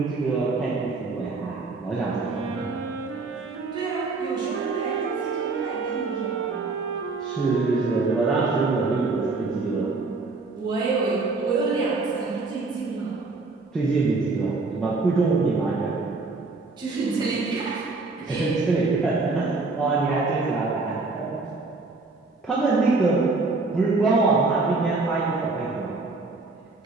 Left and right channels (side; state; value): left; quieter; 3.7 dB